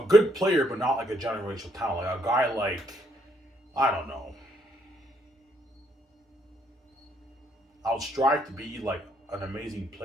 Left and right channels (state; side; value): normal; both; correlation 0.71